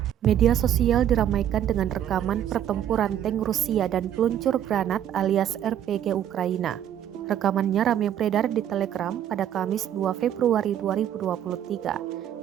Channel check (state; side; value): quieter; left; 10.5 dB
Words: Media sosial diramaikan dengan rekaman pertempuran tank Rusia dan peluncur granat alias RPG Ukraina. Rekamannya ramai beredar di Telegram pada Kamis 2 Februari 2023,